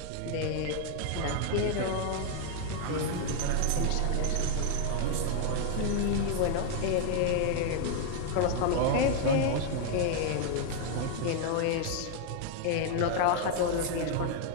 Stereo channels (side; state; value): both; different; correlation 0.00